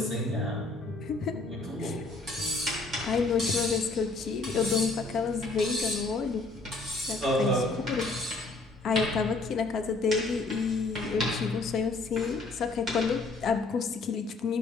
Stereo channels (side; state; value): right; quieter; 3.5 dB